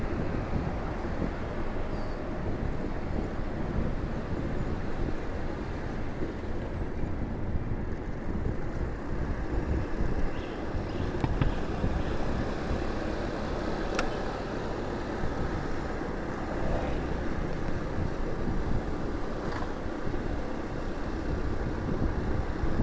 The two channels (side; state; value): both; identical; correlation 1.00